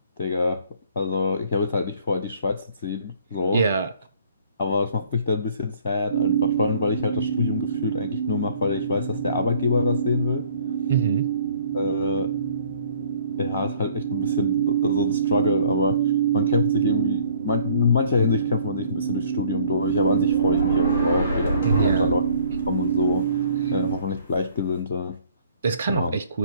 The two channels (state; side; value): inverted; both; correlation -0.57